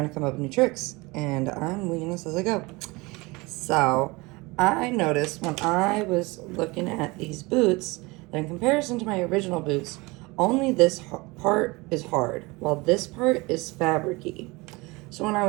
to come up with new tricks, and I'm winging this as I go. So, I noticed when I was looking at these boots that in comparison to my original boots, only this part is hard, while this part is fabricy. So when I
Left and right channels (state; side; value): quieter; left; 24.1 dB